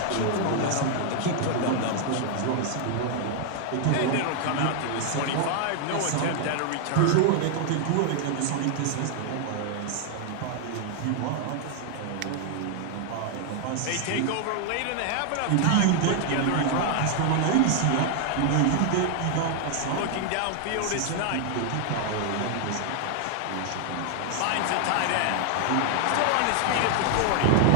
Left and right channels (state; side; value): different; both; correlation 0.00